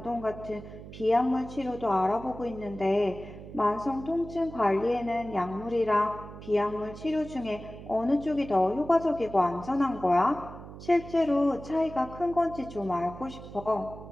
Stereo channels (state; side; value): noise; right; hum, 14 dB below the sound